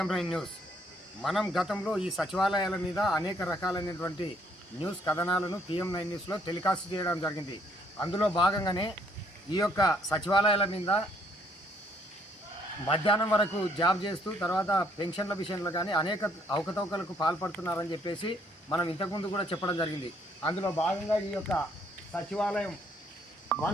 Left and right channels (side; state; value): both; normal; correlation 0.66